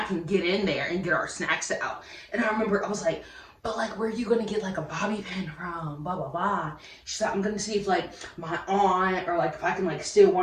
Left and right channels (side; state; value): both; identical; correlation 1.00